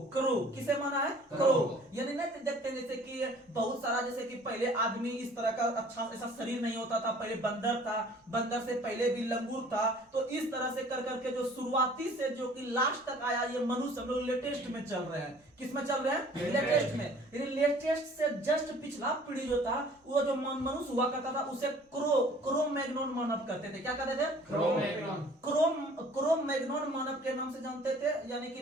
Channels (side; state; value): both; normal; correlation 0.52